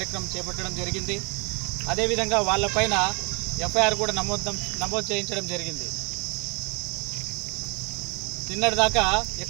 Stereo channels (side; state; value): left; quieter; 31.7 dB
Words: చేపట్టడం జరిగింది. అదేవిధంగా వాళ్ళపైన ఎఫ్ఐఆర్ కూడా నమోదు చేయించడం జరిగింది. నిన్నటిదాకా